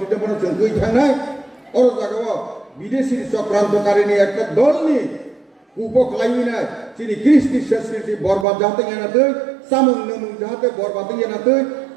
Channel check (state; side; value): drops out; left; at 8.5 s